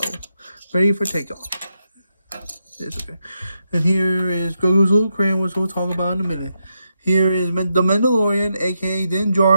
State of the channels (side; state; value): both; inverted; correlation -0.84